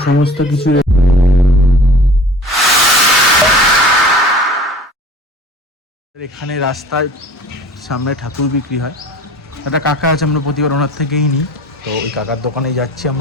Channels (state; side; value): normal; both; correlation 0.44